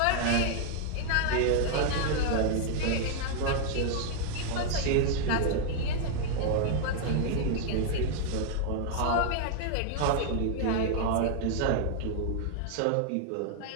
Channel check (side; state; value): both; different; correlation 0.00